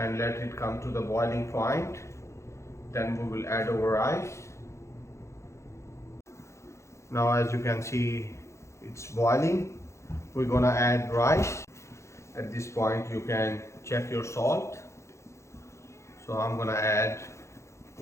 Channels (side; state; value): right; late; 0.14 ms